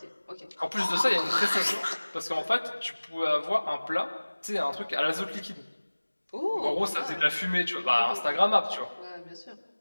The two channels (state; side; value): inverted; both; correlation -1.00